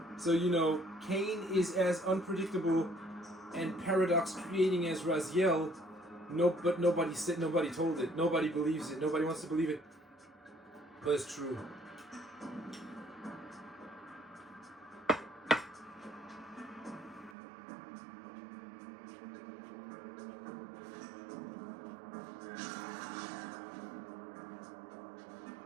so, you know, Kane is as unpredictable and paradox creating as Raziel. But nobody told it. Nobody believes it. Nobody wants to believe it. But it's true.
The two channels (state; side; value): drops out; left; at 17.4 s